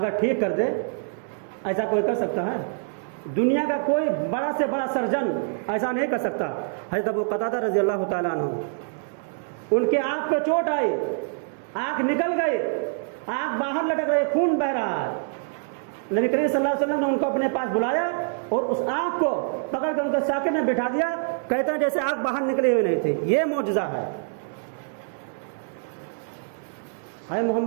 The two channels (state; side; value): silent; left; digital silence